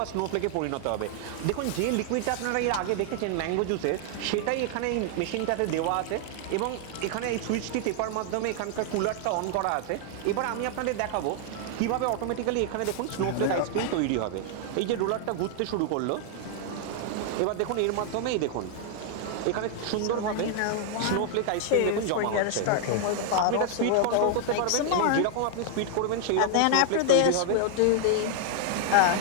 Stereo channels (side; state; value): both; different; correlation 0.00